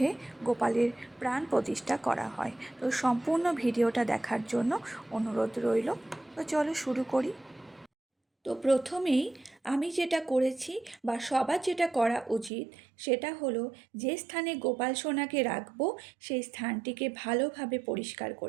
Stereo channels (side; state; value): left; drops out; at 12.5 s